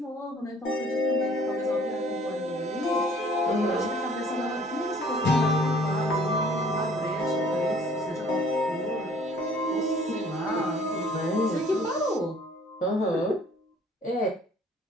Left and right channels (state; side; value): normal; both; correlation 0.55